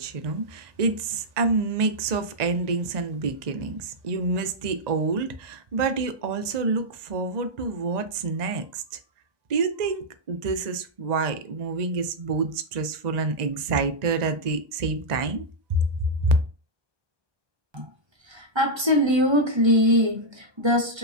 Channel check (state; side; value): late; left; 1.3 ms